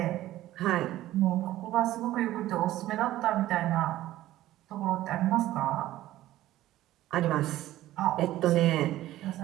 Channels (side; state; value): left; quieter; 14.8 dB